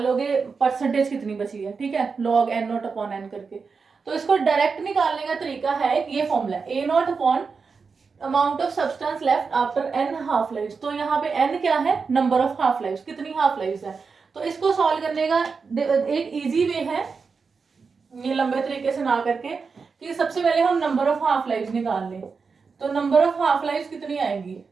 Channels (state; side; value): quieter; left; 5.1 dB